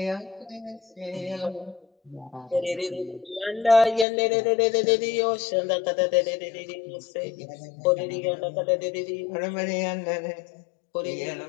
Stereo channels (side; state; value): right; drops out; at 4.0 s